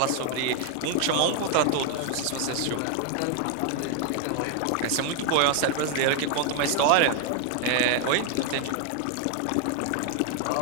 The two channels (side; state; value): both; different; correlation 0.01